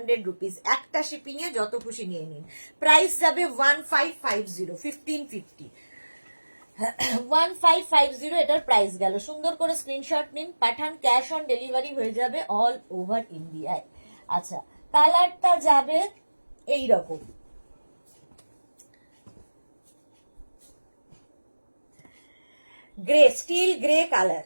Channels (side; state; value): both; inverted; correlation -1.00